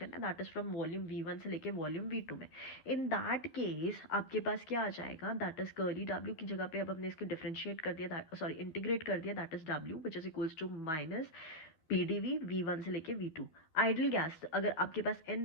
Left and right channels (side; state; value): right; late; 13 ms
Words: है, that is from volume we one से लेके वॉल्यूम वी टू में. इन दैट केस आपके पास क्या आ जाएगा, दैट इज कर्ली डब्ल्यू की जगह पे अब हमने इसको डिफरेंशिएट कर दिया, सॉरी इंटीग्रेट कर दिया, that is W which is equals to minus P D V V one से लेके वी टू. आइडल गैस अगर आपके पास n